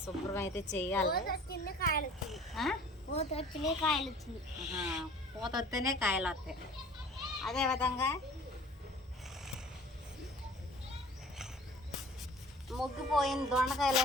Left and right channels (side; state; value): both; normal; correlation 0.47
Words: శుభ్రం అయితే చెయ్యాలి. పూత వస్తేనే కాయలు వస్తాయి. అదేవిధంగా ముగ్గిపోయిన